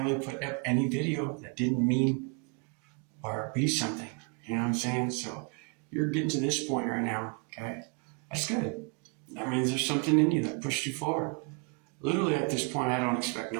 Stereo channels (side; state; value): left; quieter; 33.9 dB